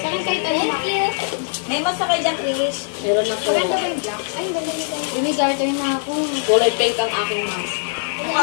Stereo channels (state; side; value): silent; right; digital silence